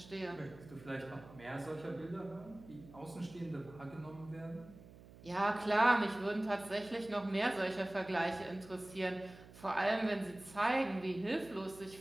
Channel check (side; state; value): right; noise; hum, 19 dB below the sound